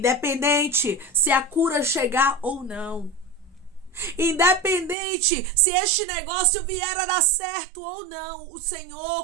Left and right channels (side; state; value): left; drops out; at 5.0 s